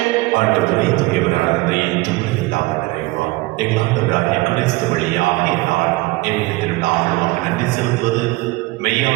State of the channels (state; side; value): quieter; left; 21.5 dB